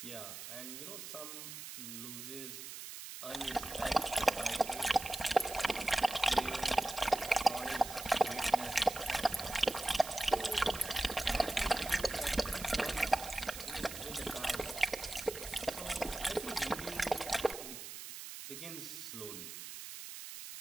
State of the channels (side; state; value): right; noise; hiss, 10 dB below the sound